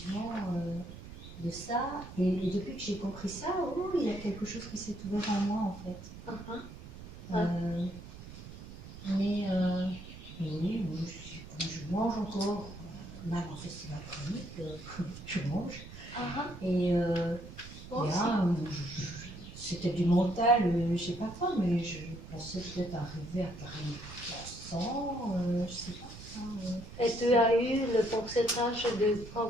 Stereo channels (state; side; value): noise; right; rumble, 14 dB below the sound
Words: de ça. Et depuis que j'ai compris ça, oh, il y a quelque chose qui s'est ouvert en moi en fait. Mais oui, je mange encore, même en festival chronique, je mange. Et là, c'était du mental, je sais pas quoi, mais je pensais peut-être arriver à 40%, je sais pas. Et tu as eu le pourcentage de